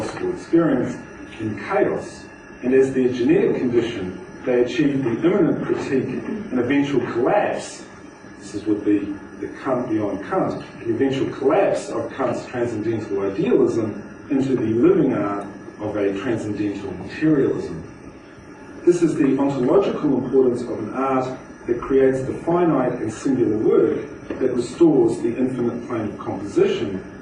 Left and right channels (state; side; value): identical; both; correlation 1.00